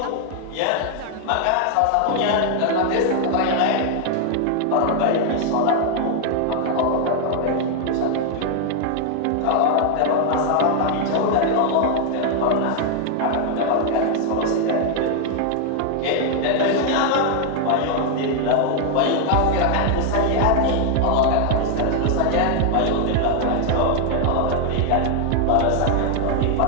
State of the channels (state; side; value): different; both; correlation 0.00